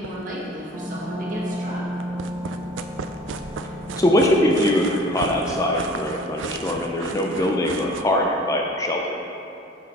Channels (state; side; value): normal; both; correlation 0.47